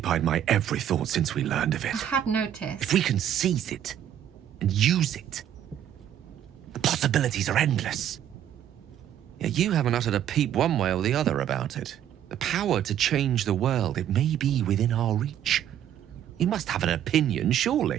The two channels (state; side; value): quieter; left; 10.5 dB